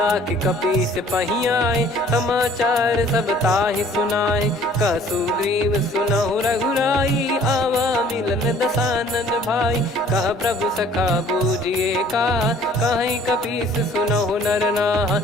कपीस पही आए, समाचार सब ताहि सुनाए। कह सुग्रीव सुनहु रघुराई, आवा मिलन दसानन भाई। कह प्रभु सखा बूझिए का, कहीं कपीस सुनहु नर नाहा।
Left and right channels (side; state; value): both; normal; correlation 0.54